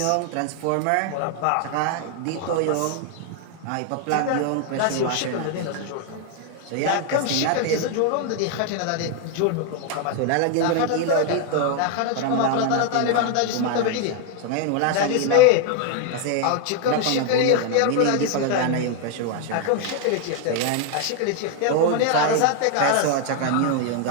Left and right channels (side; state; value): both; different; correlation 0.00